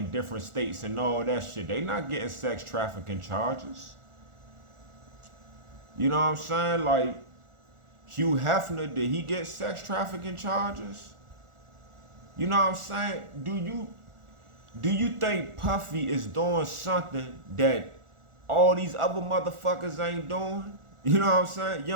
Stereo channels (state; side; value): late; left; 1.4 ms